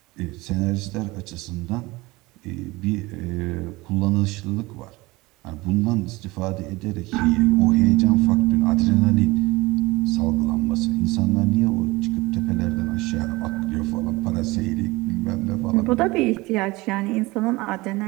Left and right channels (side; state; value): left; quieter; 21.8 dB